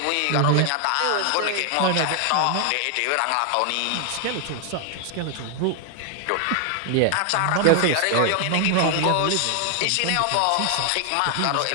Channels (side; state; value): both; different; correlation 0.00